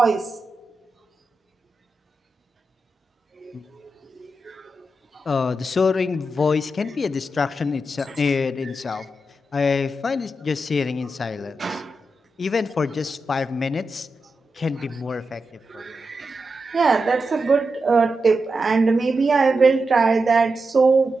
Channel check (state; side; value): normal; both; correlation 0.88